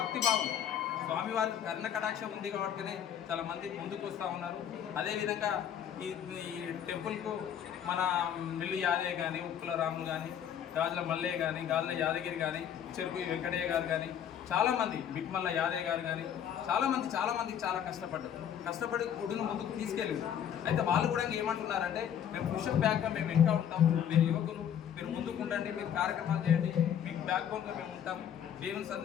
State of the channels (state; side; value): quieter; right; 9.3 dB